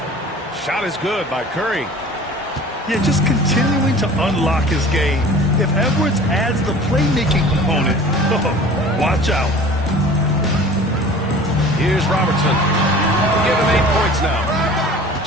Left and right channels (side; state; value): both; normal; correlation 0.43